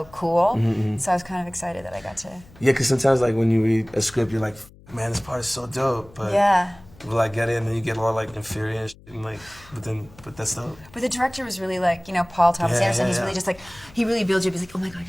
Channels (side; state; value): left; noise; hum, 24 dB below the sound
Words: cool, so I was kind of excited that I got to... Yeah, because sometimes like when you read a script, you're like, man, this part is so dope, but... Yeah. Will I get it, and then you get all like inferior and shit, and like, but that's dope. But the director was really like, you know, Paul Thomas Anderson. He's yeah. really just like, he really builds you up. He's like, oh my God,